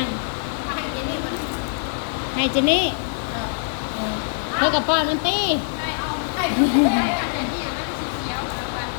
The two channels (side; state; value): right; silent; digital silence